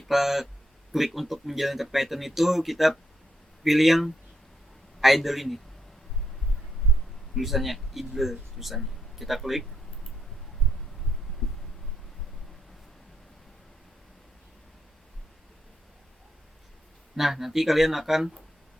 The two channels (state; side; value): normal; both; correlation 0.79